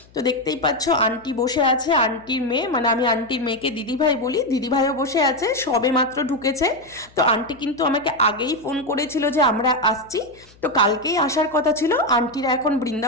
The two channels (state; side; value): noise; left; hum, 27 dB below the sound